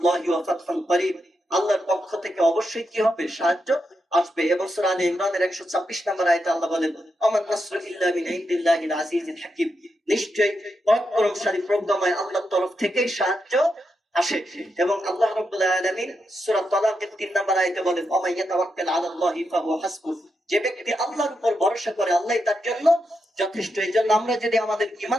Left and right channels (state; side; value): normal; both; correlation 0.85